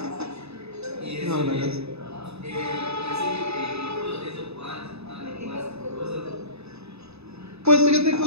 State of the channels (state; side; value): late; left; 0.79 ms